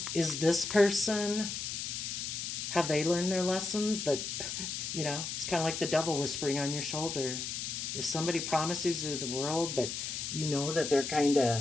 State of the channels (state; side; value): noise; left; hiss, 4 dB below the sound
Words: is this person, have they learned their lessons? That, it's kind of like the devil whispering on your shoulder. If somebody promises you the world, but you know that they're kind